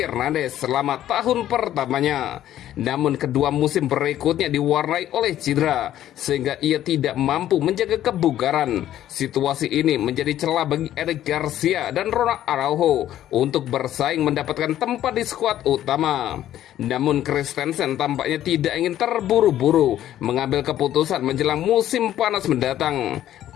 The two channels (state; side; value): quieter; right; 12.2 dB